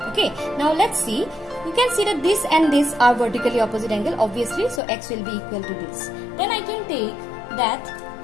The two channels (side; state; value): right; drops out; at 4.8 s